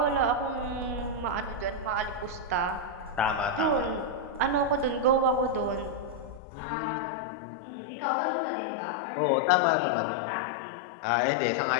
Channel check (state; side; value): drops out; right; at 6.4 s